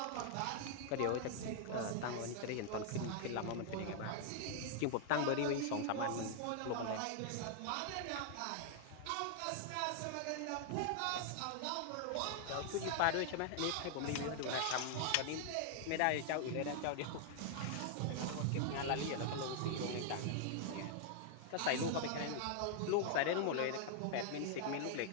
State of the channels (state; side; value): different; both; correlation 0.00